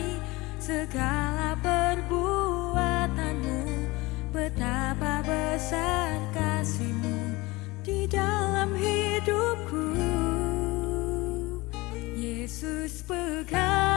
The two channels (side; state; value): right; quieter; 22.2 dB